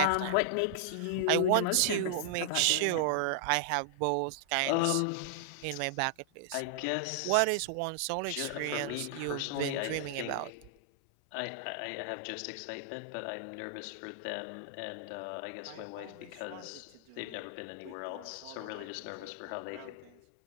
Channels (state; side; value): different; both; correlation -0.01